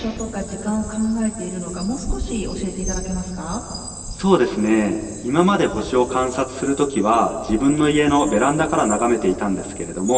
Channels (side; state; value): both; identical; correlation 1.00